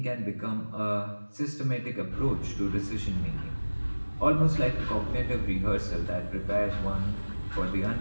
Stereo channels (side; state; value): both; inverted; correlation -1.00